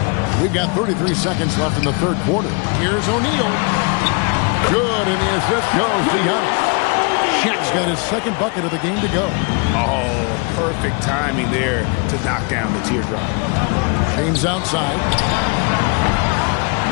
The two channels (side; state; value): right; quieter; 33.2 dB